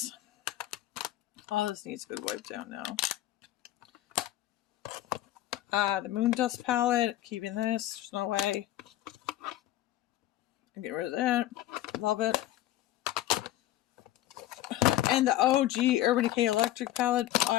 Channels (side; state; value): right; quieter; 14.7 dB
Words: Oh, this needs a good wipe down now. The Moon Dust palette, keeping this. There's no way. Get rid of that. Love it. And the OG Urban Decay Electric palette.